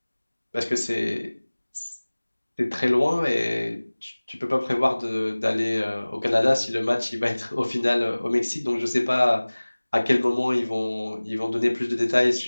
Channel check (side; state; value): both; inverted; correlation -1.00